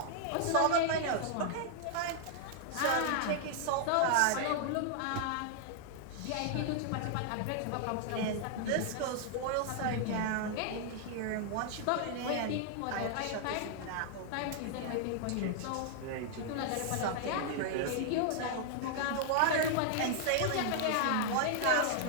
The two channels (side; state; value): both; different; correlation -0.01